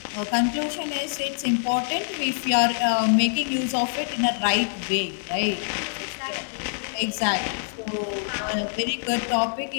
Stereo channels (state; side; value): silent; right; digital silence